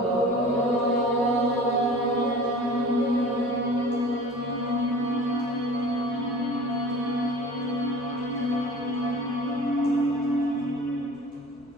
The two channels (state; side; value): normal; both; correlation 0.41